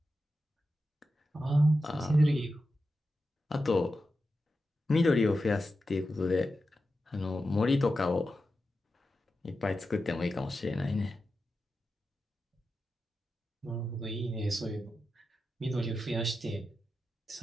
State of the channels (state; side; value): normal; both; correlation 0.91